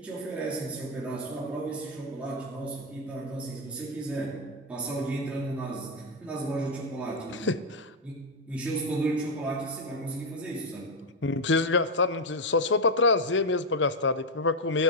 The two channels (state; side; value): normal; both; correlation 0.05